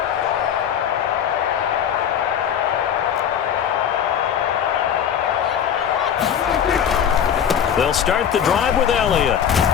They'll start the drive with Elliott.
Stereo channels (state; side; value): quieter; right; 8.7 dB